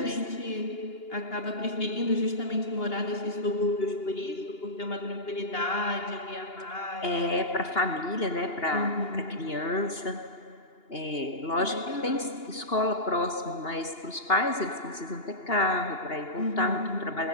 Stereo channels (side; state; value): right; late; 2.8 ms